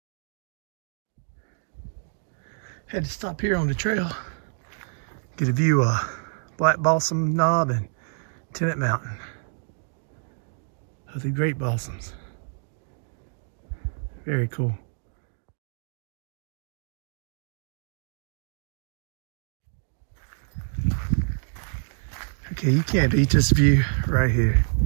Had to stop here on the trail, get a view of Black Balsam Knob and Tennant Mountain of the great balsams. Very cool. Okay, you can't beat this view right here.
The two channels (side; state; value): left; silent; digital silence